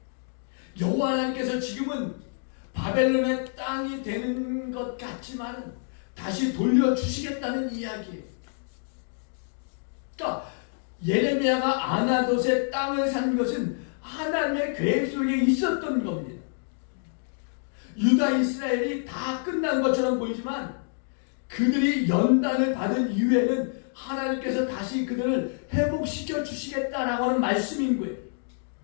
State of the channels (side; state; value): right; silent; 60 dB below the other